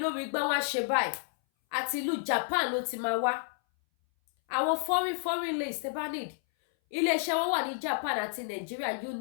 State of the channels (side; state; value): right; silent; 57 dB below the other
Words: lórí gbá wọn ṣe báyìí àti ìlú Japan ló ti máa wá àwọn foreign lace tẹ́ bá need iléeṣẹ́ wọn wà ní Japan àti Nigeria